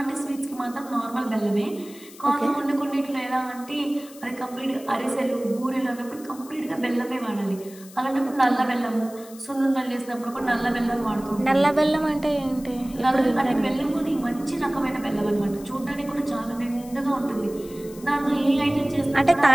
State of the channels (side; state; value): left; noise; hiss, 20 dB below the sound